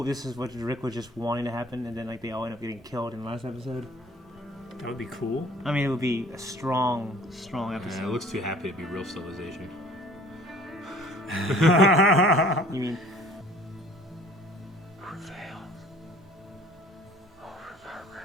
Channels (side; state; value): both; normal; correlation 0.51